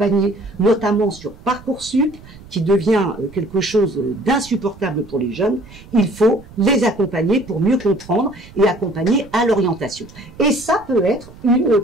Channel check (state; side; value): noise; right; rumble, 20 dB below the sound